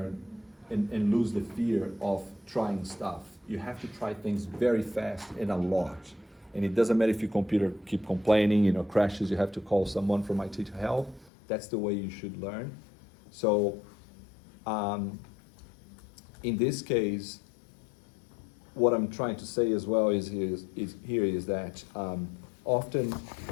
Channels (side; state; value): right; drops out; at 11.3 s